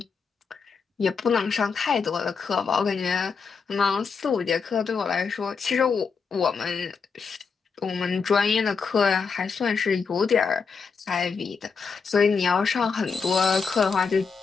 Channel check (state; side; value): quieter; right; 5.5 dB